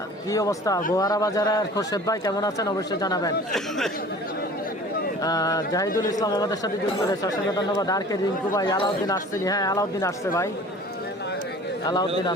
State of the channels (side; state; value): both; normal; correlation 0.44